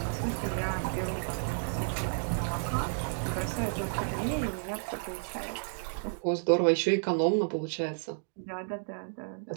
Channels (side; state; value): left; silent; digital silence